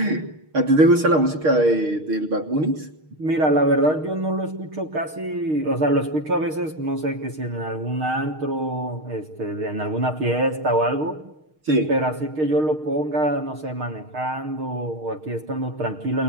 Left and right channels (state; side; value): late; left; 6.5 ms